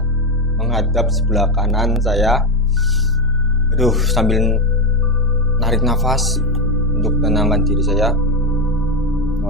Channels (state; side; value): normal; both; correlation 0.13